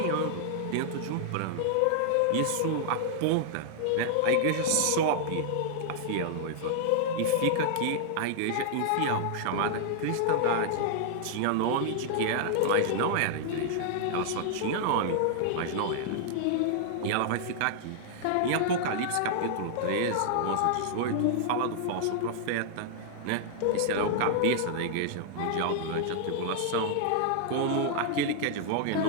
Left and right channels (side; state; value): both; different; correlation -0.01